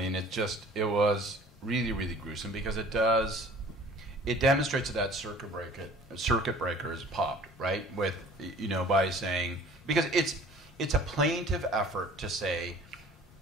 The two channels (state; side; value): normal; both; correlation 0.49